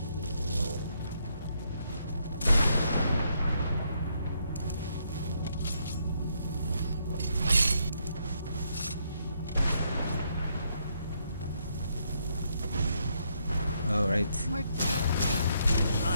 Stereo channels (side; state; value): both; inverted; correlation -0.75